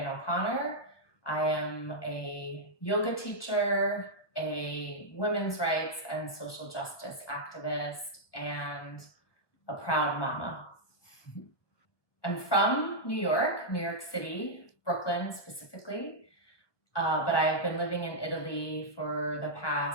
O'Connor. I am a yoga teacher, a women's rights and social justice activist, and a proud mama. I'm from New York City, Brooklyn specifically, but I've been living in Italy for the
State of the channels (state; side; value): late; right; 1.3 ms